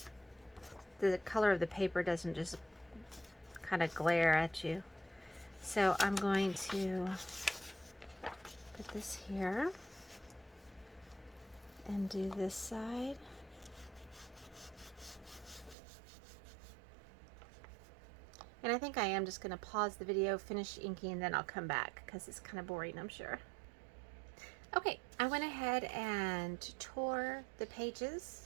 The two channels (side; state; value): left; drops out; at 15.8 s